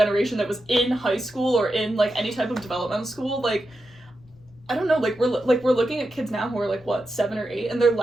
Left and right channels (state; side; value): noise; left; rumble, 28 dB below the sound